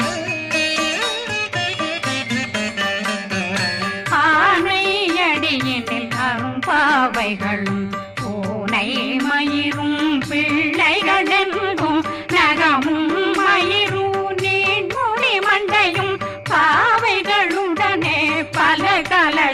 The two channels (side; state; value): both; identical; correlation 1.00